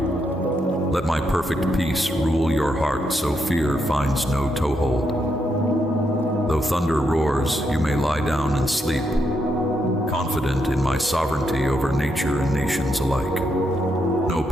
Let my perfect peace rule your heart so fear finds no toehold. Though thunder roars, you may lie down and sleep, confident in my sovereignty over nature and nations alike. No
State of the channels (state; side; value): normal; both; correlation 0.80